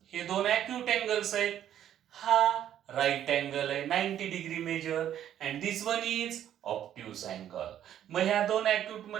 हे दोन अॅक्यूट अँगल्स आहेत. हा राईट अँगल आहे 90 degree measure, and this one is obtuse angle. मग ह्या दोन अॅक्यूट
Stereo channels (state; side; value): quieter; left; 10.7 dB